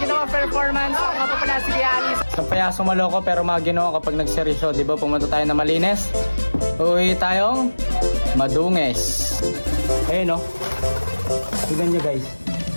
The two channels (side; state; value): both; inverted; correlation -1.00